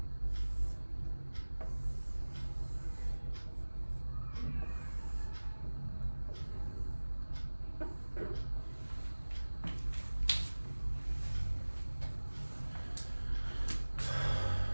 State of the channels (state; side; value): inverted; both; correlation -1.00